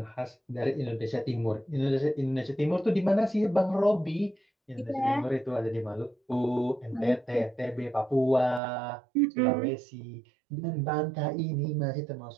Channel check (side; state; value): left; drops out; at 8.6 s